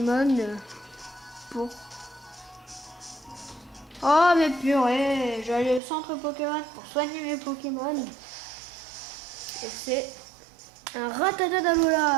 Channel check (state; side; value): drops out; left; at 5.8 s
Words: pour... Oh, mais purée! Je vais aller au centre Pokémon pour soigner mes Pokémon. Et c'est un Rattata